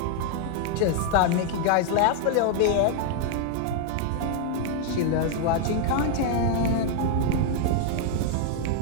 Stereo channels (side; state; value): both; different; correlation 0.00